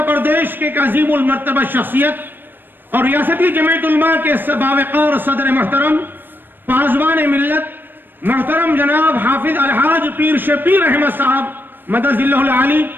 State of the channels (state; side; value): late; left; 0.094 ms